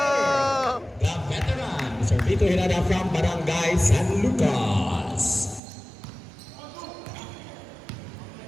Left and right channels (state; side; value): drops out; left; at 5.6 s